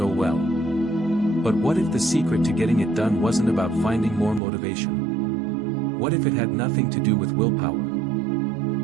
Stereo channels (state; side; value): drops out; left; at 4.4 s